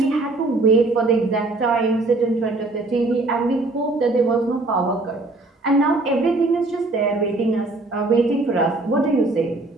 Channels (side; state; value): left; quieter; 3.1 dB